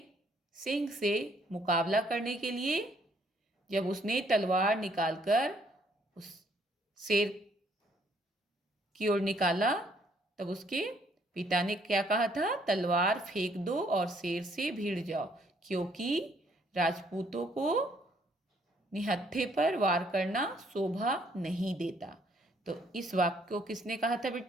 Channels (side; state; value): both; normal; correlation 0.66